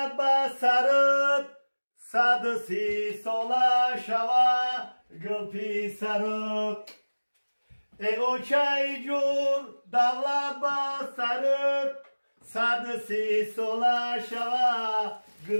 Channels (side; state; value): both; inverted; correlation -1.00